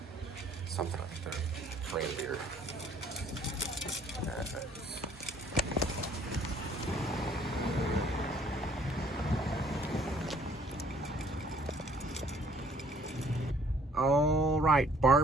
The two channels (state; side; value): normal; both; correlation 0.60